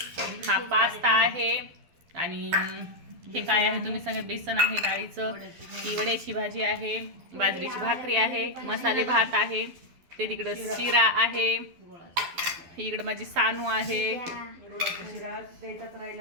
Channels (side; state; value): left; late; 12 ms